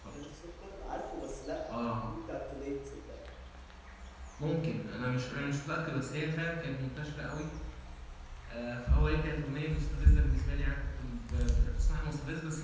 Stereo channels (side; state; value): both; identical; correlation 1.00